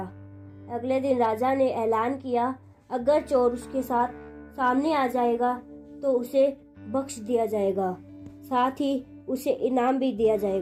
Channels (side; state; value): both; identical; correlation 1.00